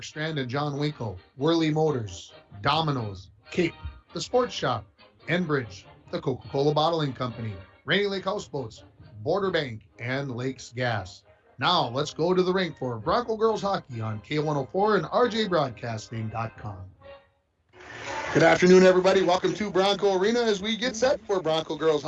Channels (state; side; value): identical; both; correlation 1.00